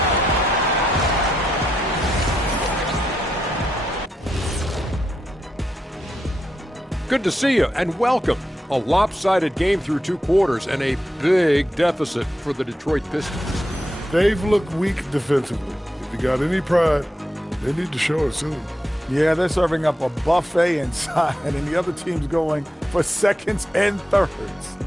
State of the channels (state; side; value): normal; both; correlation 0.84